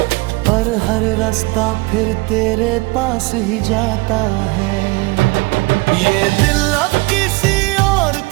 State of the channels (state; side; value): quieter; left; 24.7 dB